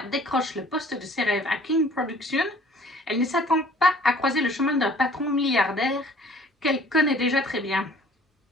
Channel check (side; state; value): both; normal; correlation 0.53